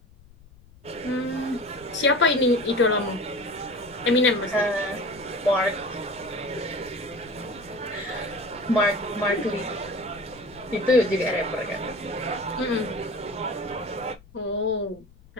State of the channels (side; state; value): left; noise; rumble, 24 dB below the sound